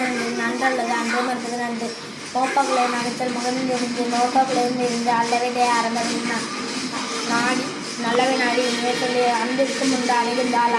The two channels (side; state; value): both; identical; correlation 1.00